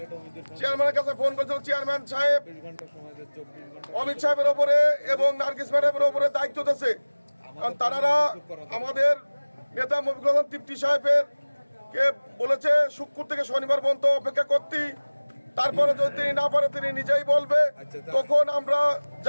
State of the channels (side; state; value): both; inverted; correlation -1.00